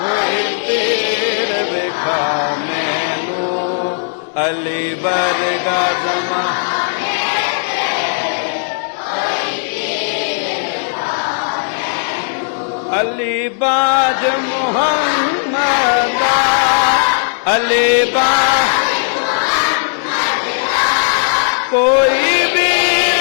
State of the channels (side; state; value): right; silent; 68 dB below the other